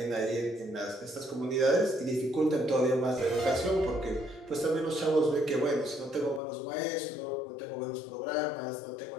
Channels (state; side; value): drops out; right; at 6.4 s